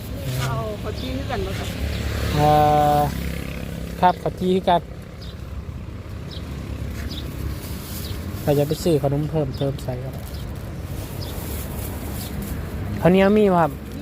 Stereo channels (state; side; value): identical; both; correlation 1.00